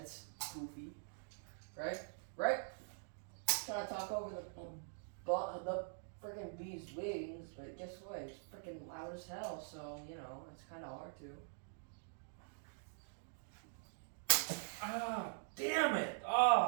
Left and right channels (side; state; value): left; silent; digital silence